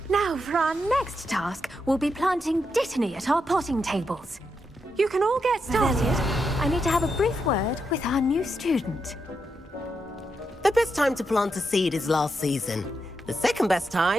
Now, for our next task, we'll be planting dittany at our potting tables. You can all get started. I need to have a brief word with our new student. The best time to plant a seed is last season. The second best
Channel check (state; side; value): normal; both; correlation 0.84